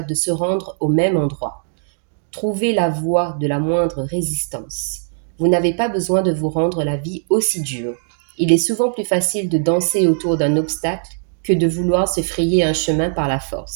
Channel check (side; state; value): left; silent; digital silence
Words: de se rendre au même endroit. Trouvez la voie de la moindre résistance. Vous n'avez pas besoin de vous rendre la vie aussi dure. Il est souvent plus facile de danser autour d'un obstacle que de vouloir se frayer un chemin par la